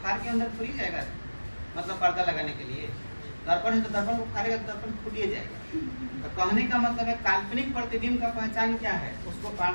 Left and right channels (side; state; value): both; inverted; correlation -1.00